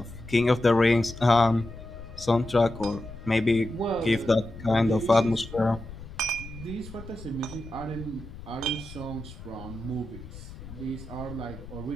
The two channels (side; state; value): left; noise; rumble, 14 dB below the sound